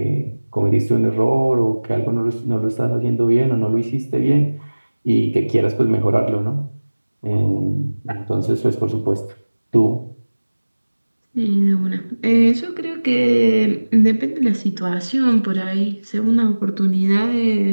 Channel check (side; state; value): both; inverted; correlation -1.00